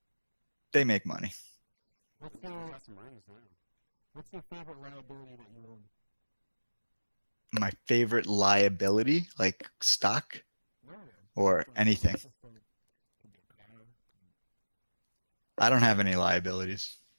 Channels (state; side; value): inverted; both; correlation -1.00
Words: they make money. What's your favorite liability that you own? My favorite liability, like stock or anything. I don't have any liabilities.